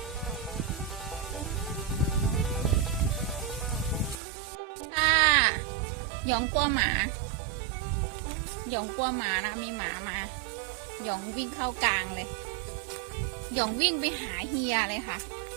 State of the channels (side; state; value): left; drops out; at 4.2 s